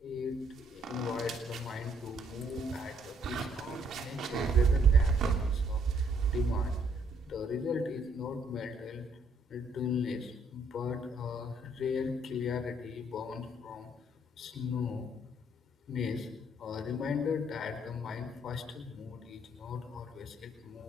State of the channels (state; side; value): normal; both; correlation 0.67